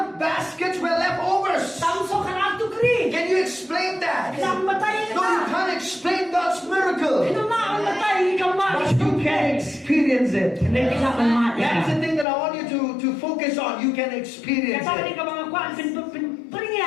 baskets were leftovers. Tamso ka to kri. Can you explain that? Kimna matay No, you ka. can't explain God's miracle. Kimna matay ka ma. But you can experience it. Hindi ka man That's the thing that I want you to focus on. You can experience Katani it. ka mga kwan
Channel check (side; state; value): right; drops out; at 12.2 s